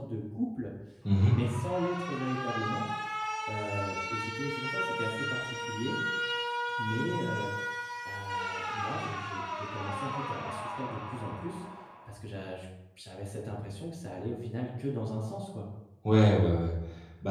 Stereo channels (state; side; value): identical; both; correlation 1.00